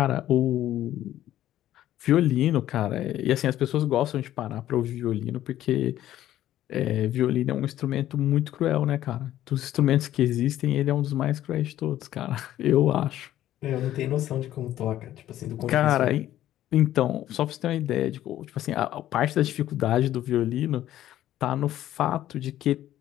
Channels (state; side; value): quieter; right; 13.0 dB